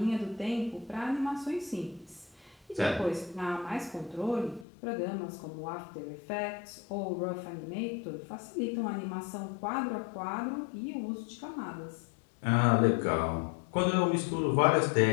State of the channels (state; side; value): drops out; right; at 4.7 s